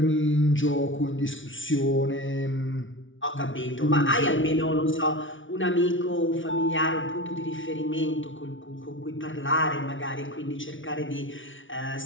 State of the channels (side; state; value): right; late; 0.56 ms